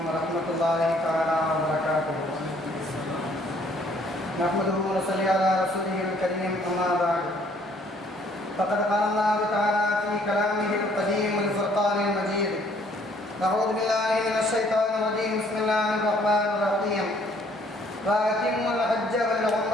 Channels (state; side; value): normal; both; correlation 0.62